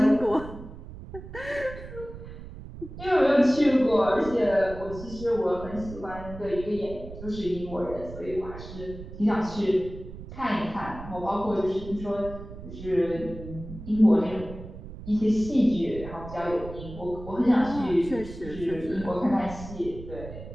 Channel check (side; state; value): right; noise; rumble, 13 dB below the sound